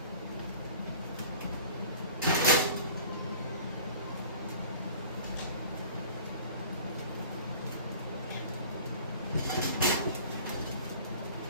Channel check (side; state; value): both; inverted; correlation -0.45